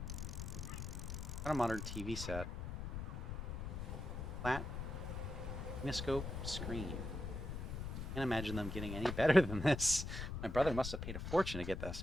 Got a modern TV set. Flat Kinescope screen. Can't imagine them getting any better than this. My brother must have paid a fortune to get this.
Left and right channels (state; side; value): noise; left; rumble, 5 dB below the sound